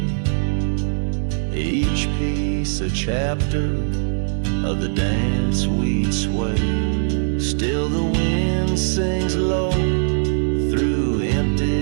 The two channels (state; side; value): silent; left; digital silence